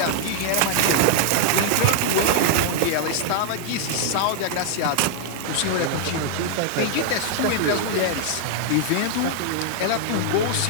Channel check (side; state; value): both; different; correlation -0.01